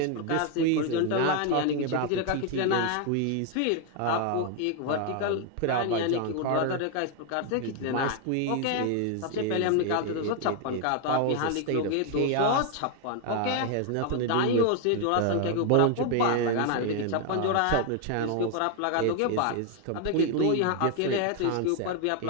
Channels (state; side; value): different; both; correlation 0.01